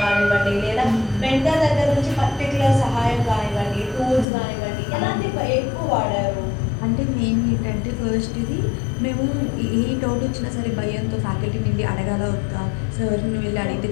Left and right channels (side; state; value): right; drops out; at 4.2 s